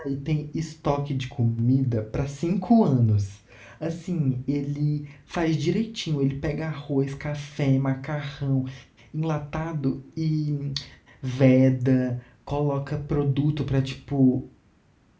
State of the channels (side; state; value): both; identical; correlation 1.00